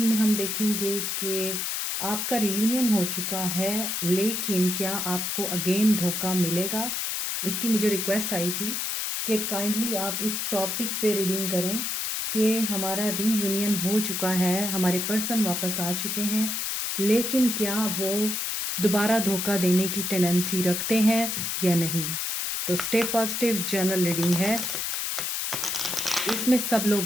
में हम देखेंगे कि आपका रियूनियन हो चुका है, लेकिन क्या आपको अगेन धोखा मिलेगा? इसकी मुझे रिक्वेस्ट आई थी कि काइंडली आप इस टॉपिक पे रीडिंग करें कि हमारा रीयूनियन हो चुका है, हमारे पर्सन वापस आ चुके हैं, लेकिन क्या वो दोबारा धोखा देने की टेंडेंसी रखते हैं या नहीं। तो स्टे पॉजिटिव जनरल रीडिंग है। इसमें सब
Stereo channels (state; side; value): noise; left; hiss, 1 dB below the sound